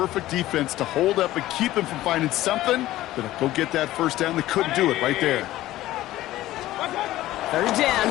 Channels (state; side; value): quieter; right; 15.5 dB